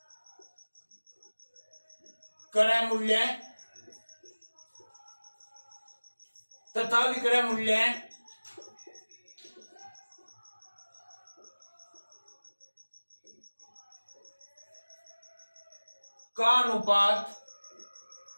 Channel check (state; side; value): inverted; both; correlation -1.00